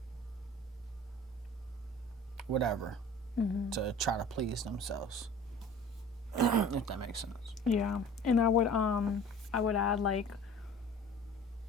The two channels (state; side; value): normal; both; correlation 0.44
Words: whatever. To try to please themselves, if that makes sense. Yeah, and I would add, like,